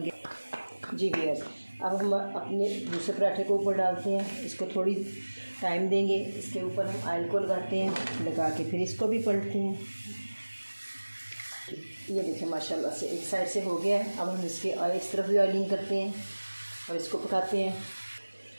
गया। जी व्यूअर्स, अब हम अपने दूसरे पराठे को ऊपर डालते हैं। इसको थोड़ी टाइम देंगे। इसके ऊपर हम ऑयल को लगाते हैं, लगा के फिर इसको भी पलटते हैं। ये देखिए माशाल्लाह से एक साइड से हो गया है। अब हम इसके इस तरफ भी ऑयलिंग करते हैं और इसको पकाते हैं।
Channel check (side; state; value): both; inverted; correlation -1.00